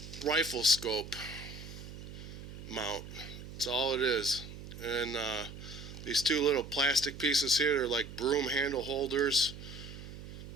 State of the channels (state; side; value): noise; right; hum, 12 dB below the sound